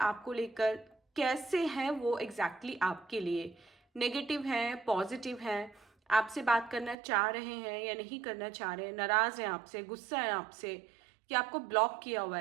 लेकर, कैसे हैं वो एग्जैक्टली आपके लिए, नेगेटिव हैं, पॉजिटिव हैं, आपसे बात करना चाह रहे हैं या नहीं करना चाह रहे हैं, नाराज हैं आपसे, गुस्सा है आपसे, कि आपको ब्लॉक किया हुआ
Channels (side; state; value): left; drops out; at 7.0 s